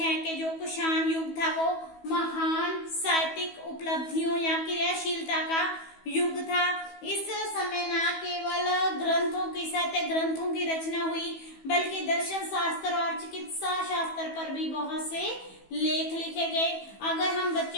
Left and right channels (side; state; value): right; late; 15 ms